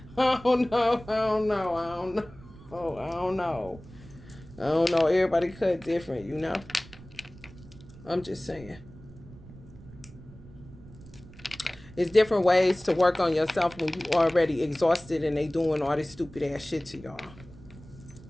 I don't know. I don't know. I don't know. Everybody cut different, you know? I'm just saying. It's different ways to work on yourself when you already exhausted and they doing all this stupid ass shit to y'all.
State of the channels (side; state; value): right; noise; rumble, 19 dB below the sound